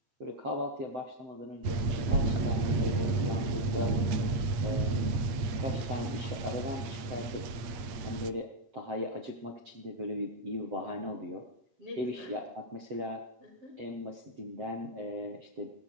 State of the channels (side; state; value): left; late; 8.5 ms